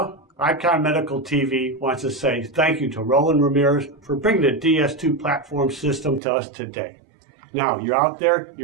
Icon Medical TV wants to say thank you to Roland Ramirez for bringing the DS2 platform system to us today. Now, you're out there,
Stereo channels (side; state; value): left; drops out; at 6.2 s